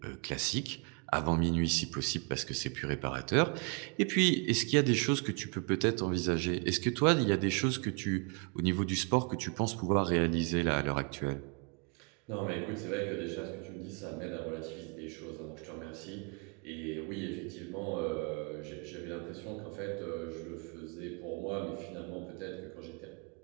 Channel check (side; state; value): left; quieter; 35.8 dB